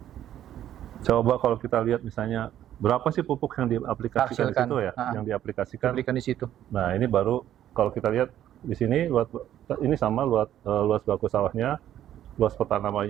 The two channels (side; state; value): left; quieter; 11.6 dB